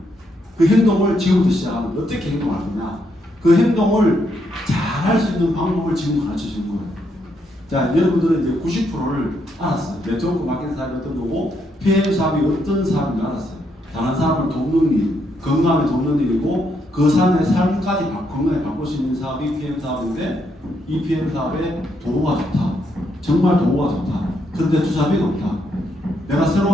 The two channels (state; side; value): normal; both; correlation 0.77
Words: 그 행동을 지금부터 시작하면 어떻게 행동할 거냐? 그 행동을 잘 할 수 있는 방법을 지금 가르쳐 준 거예요. 자, 여러분들은 이제 90%를 알았어요. 네트워크 마케팅 사업이 어떤 거고, PM 사업이 어떤 사업인지 알았어요. 다른 사람을 돕는 일, 건강에 돕는 일이고, 그 사람의 삶까지 건강에 바꿀 수 있는 사업이 PM 사업인데, 이 PM 사업에 도구가 좋다. 정말 도구가 좋다. 그런데 투자비가 없다. 내가